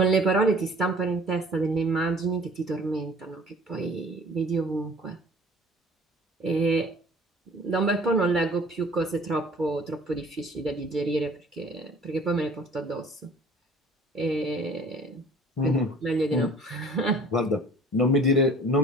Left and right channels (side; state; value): both; normal; correlation 0.50